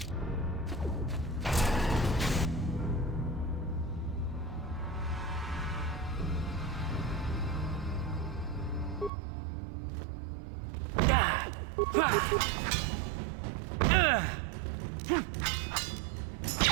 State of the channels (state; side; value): drops out; left; at 9.1 s